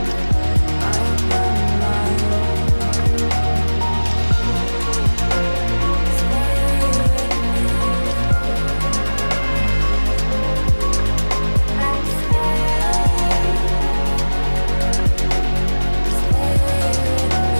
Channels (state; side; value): inverted; both; correlation -1.00